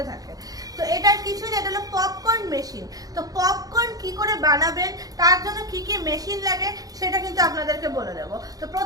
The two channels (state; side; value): late; left; 0.18 ms